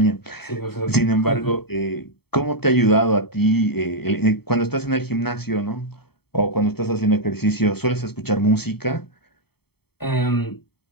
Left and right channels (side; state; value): right; late; 0.96 ms